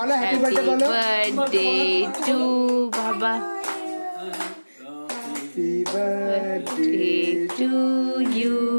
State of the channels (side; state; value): both; inverted; correlation -1.00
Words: হ্যাপি বার্থডে বলো বার্থডে টু বাবা happy birthday to you